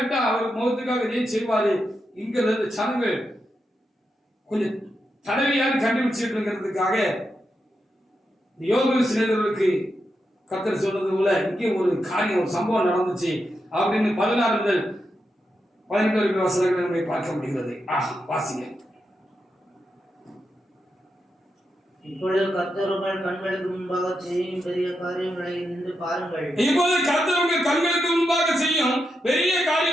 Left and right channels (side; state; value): both; normal; correlation 0.85